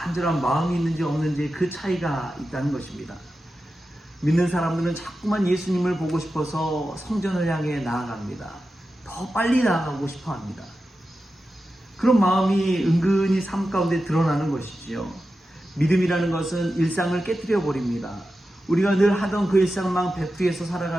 마음이 있는지 없는지 그 차이가 있다는 것입니다. 믿는 사람들은 자꾸만 예수님을 보고 싶어서 성전을 향해 나아갑니다. 더 빨리 나아가고 싶어 합니다. 그런 마음이 은근히 삶 가운데 드러나는 것이지요. 믿음이라는 것은 일상을 깨뜨려 버립니다. 우리가 늘 하던 그 일상만 백두에서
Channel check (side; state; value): both; normal; correlation 0.92